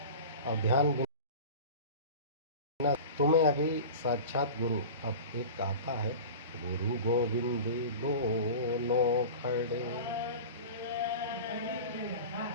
और ध्यान बिना तुम्हें अभी साक्षात गुरु, अब एक आता है, गुरु गोविंद दोनों खड़े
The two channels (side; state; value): both; inverted; correlation -0.33